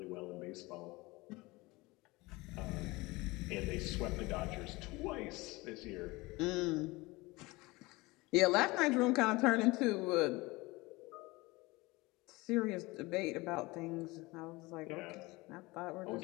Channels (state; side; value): quieter; right; 22.4 dB